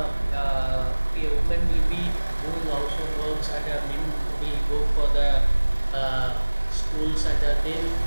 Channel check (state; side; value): inverted; both; correlation -1.00